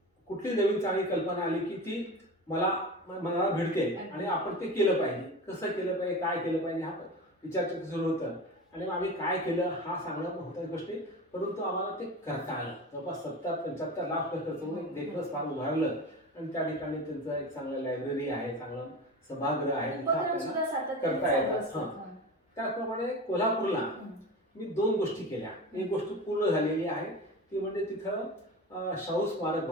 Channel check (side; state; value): both; normal; correlation 0.30